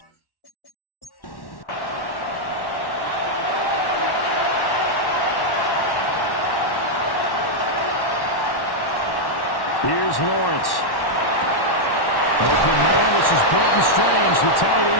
here's Lawrence. Open man, this is Brenton Strange, the tight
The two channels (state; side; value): late; right; 1.1 ms